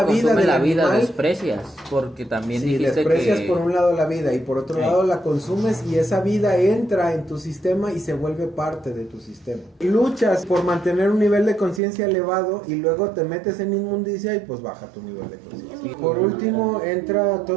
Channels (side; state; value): left; drops out; at 11.8 s